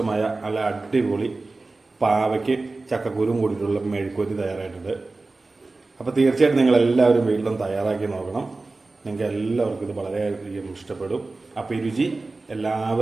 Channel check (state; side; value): quieter; left; 3.4 dB